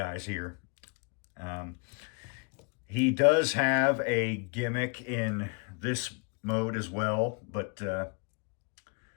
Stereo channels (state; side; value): quieter; right; 34.4 dB